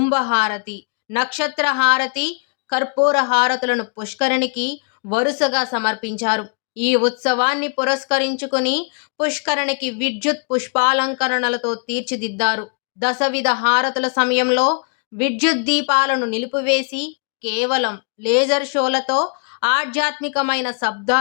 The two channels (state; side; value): quieter; right; 39.7 dB